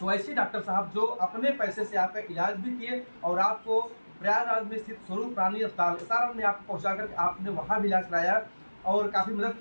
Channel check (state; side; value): inverted; both; correlation -1.00